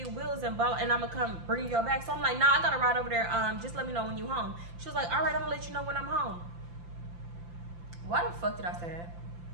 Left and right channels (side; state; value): left; late; 5.8 ms